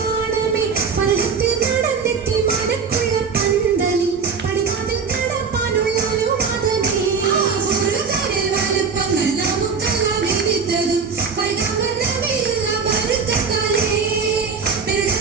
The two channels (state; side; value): quieter; left; 5.5 dB